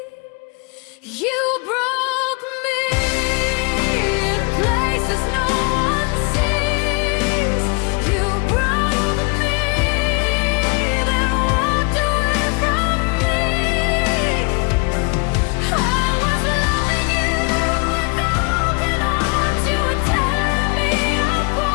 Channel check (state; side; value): quieter; right; 31.4 dB